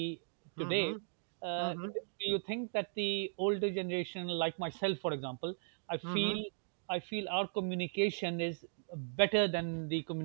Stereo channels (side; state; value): left; silent; digital silence